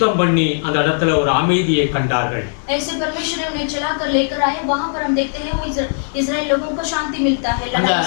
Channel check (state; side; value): silent; right; 67 dB below the other